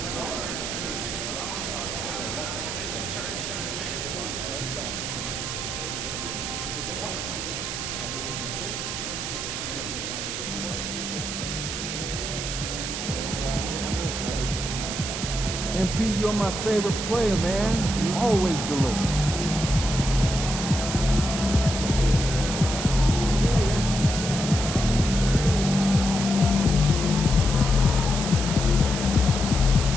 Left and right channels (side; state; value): right; noise; hiss, 4 dB below the sound